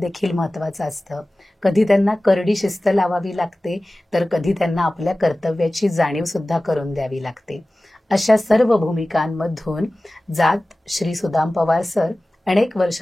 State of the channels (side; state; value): both; normal; correlation 0.97